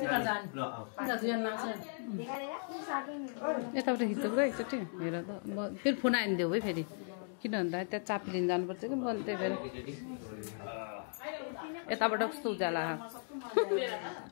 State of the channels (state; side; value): silent; right; 53 dB below the other